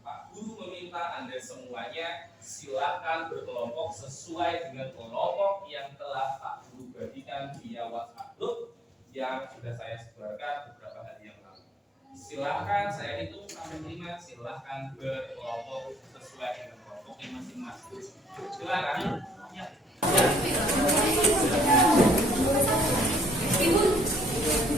Pak Guru meminta Anda semuanya silakan berkelompok sesuai dengan kelompok yang telah Pak Guru bagikan via WhatsApp group yang sudah saya sebarkan beberapa hari yang lalu. Silakan, saya hitung sampai 5, silakan berkelompok sesuai dengan kelompoknya masing-masing. Silakan. Ya.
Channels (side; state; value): both; normal; correlation 0.65